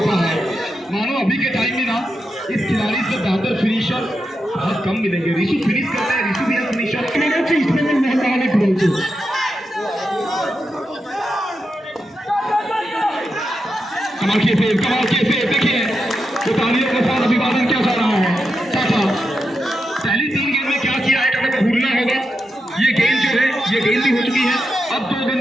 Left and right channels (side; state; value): both; normal; correlation 0.87